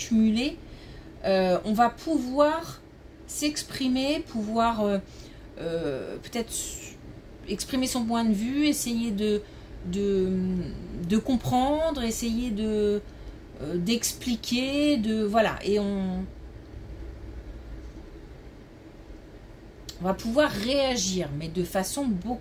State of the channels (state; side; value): identical; both; correlation 1.00